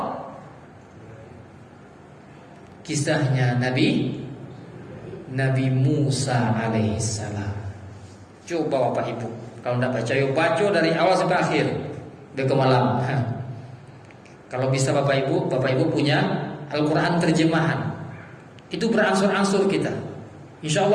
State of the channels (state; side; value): identical; both; correlation 1.00